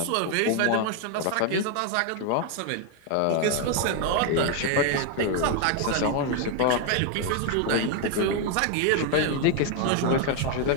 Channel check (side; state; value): both; different; correlation 0.01